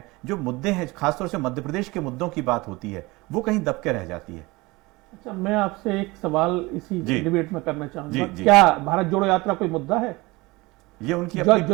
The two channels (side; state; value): left; quieter; 22.7 dB